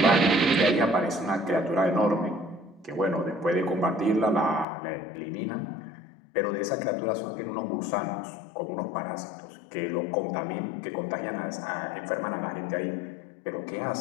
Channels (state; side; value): drops out; right; at 4.7 s